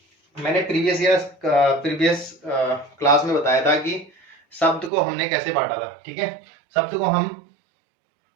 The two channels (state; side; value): drops out; left; at 4.9 s